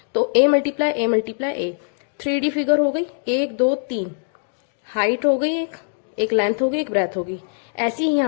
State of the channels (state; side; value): silent; right; digital silence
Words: तो A multiply A, 3D figure हो गई, 1 2 3, हाइट हो गई, एक लेंथ हो गई, एक ब्रेथ हो गई। ऐसी ही